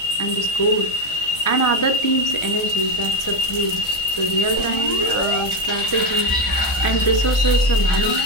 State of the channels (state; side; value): late; right; 1.4 ms